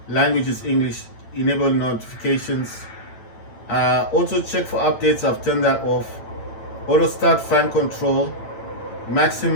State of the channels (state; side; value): late; right; 9.0 ms